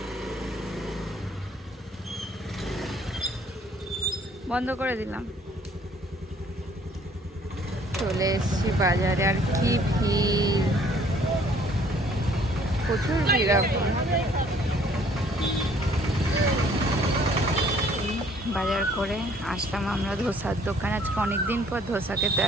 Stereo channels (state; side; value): normal; both; correlation 0.59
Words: বন্ধ করে দিলাম। চলে এসছি বাজারে, আর কি ভিড়, প্রচুর ভিড় এখন। বাজার করে আসলাম আমরা ধোসার দোকান, আজকে অনেকদিন পর ধোসা খেতে